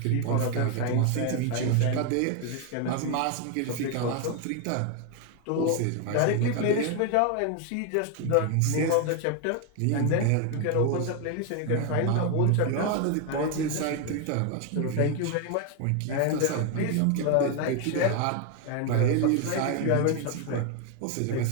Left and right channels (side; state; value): both; different; correlation 0.01